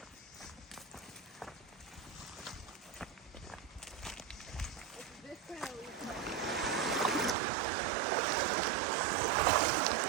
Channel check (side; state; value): left; drops out; at 7.4 s